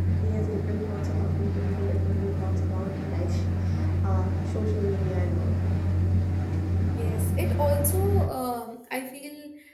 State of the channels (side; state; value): both; identical; correlation 1.00